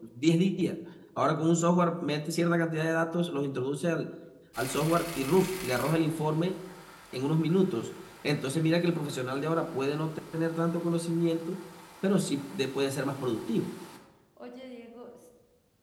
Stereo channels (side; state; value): both; identical; correlation 1.00